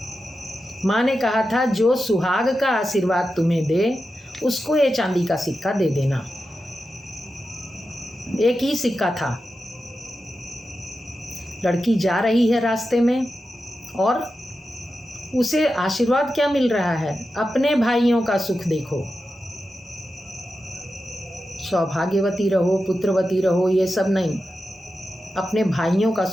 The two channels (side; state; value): both; normal; correlation 0.91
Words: माँ ने कहा था, जो सुहाग का आशीर्वाद तुम्हें दे उसको ये चांदी का सिक्का दे देना। एक ही सिक्का था। लड़की जा रही है रास्ते में और उसे आशीर्वाद क्या मिल रहा है? अपने भाइयों का सुख देखो, सौभाग्यवती रहो, पुत्रवती रहो, ये सब नहीं, अपने भाइयों का